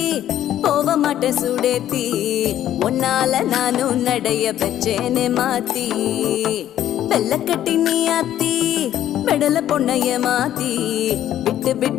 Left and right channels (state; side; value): quieter; right; 11.8 dB